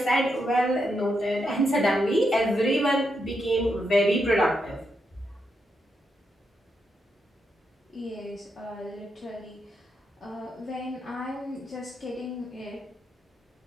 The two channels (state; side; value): normal; both; correlation 0.82